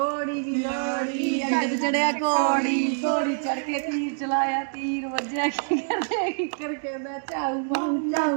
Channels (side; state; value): left; silent; digital silence